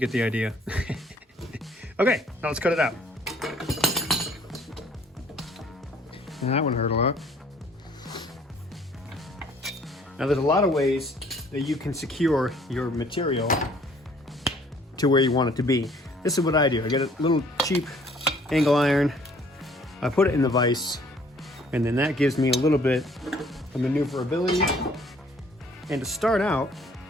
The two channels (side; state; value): both; normal; correlation 0.58